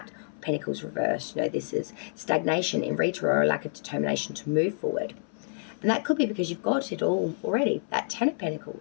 of Pentacles reversed. You know, this is stagnation in retro or a lack of determination to move forward. And that could be because you've got it all already, that 10 of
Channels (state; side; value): silent; right; 56 dB below the other